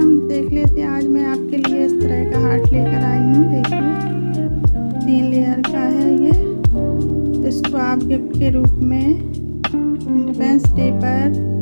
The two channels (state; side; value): inverted; both; correlation -1.00